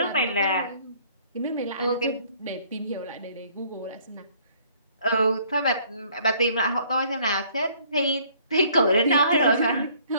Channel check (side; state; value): both; inverted; correlation -0.60